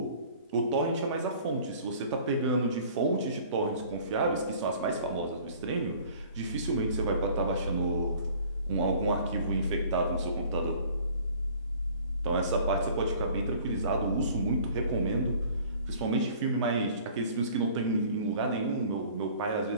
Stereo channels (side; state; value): both; inverted; correlation -0.51